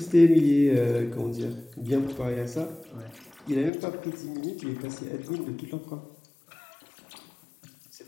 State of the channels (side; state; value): right; drops out; at 3.7 s